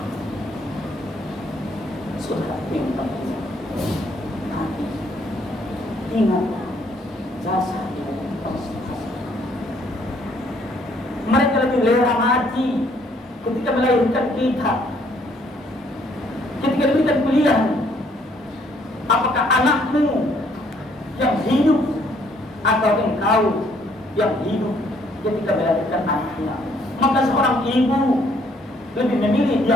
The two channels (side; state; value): both; normal; correlation 0.66